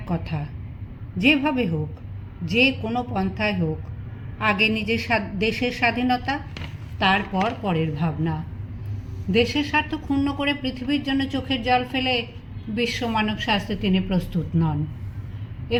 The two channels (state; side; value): identical; both; correlation 1.00